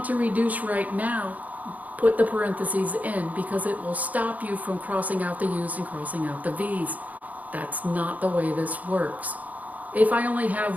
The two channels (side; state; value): left; late; 0.076 ms